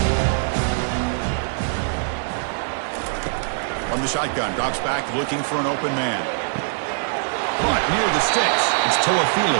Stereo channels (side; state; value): left; silent; digital silence